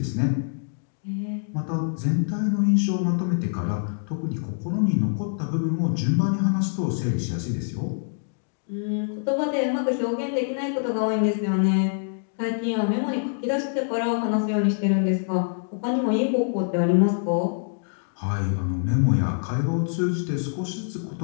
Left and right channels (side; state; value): right; silent; digital silence